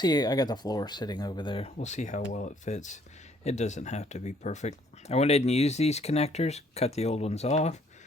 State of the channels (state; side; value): normal; both; correlation 0.64